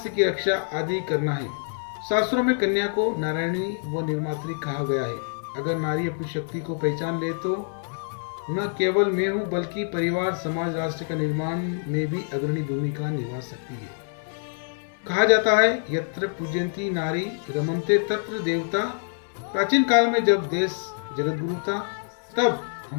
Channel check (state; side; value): silent; right; 61 dB below the other